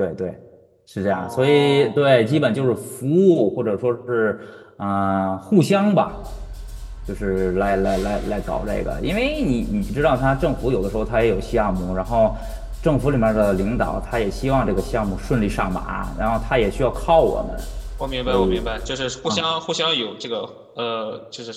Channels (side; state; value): both; identical; correlation 1.00